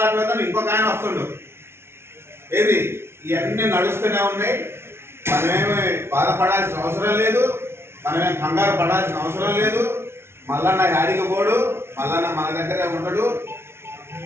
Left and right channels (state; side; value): late; left; 0.12 ms